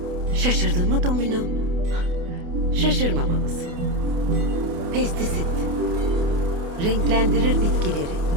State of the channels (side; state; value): left; late; 28 ms